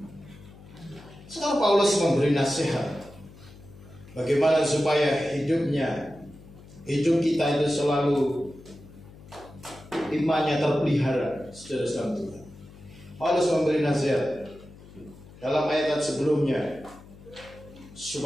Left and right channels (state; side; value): noise; left; hum, 20 dB below the sound